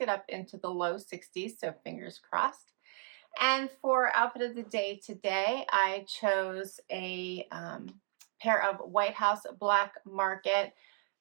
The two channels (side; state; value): left; silent; 55 dB below the other